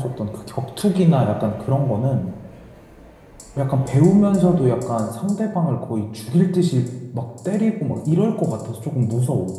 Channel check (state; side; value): identical; both; correlation 1.00